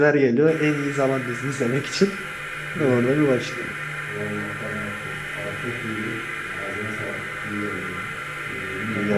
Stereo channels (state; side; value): identical; both; correlation 1.00